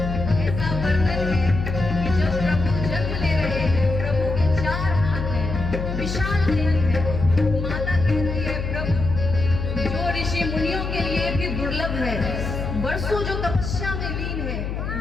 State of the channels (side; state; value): left; noise; hum, 4 dB below the sound